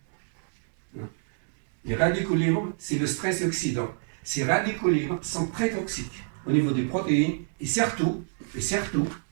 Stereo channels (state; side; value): silent; left; 60 dB below the other